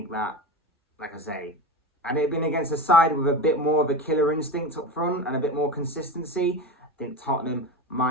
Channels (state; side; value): normal; both; correlation 0.24